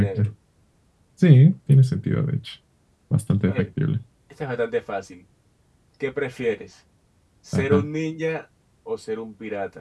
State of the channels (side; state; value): both; identical; correlation 1.00